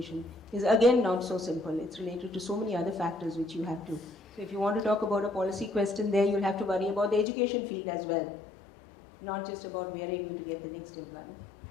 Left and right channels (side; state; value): right; drops out; at 7.2 s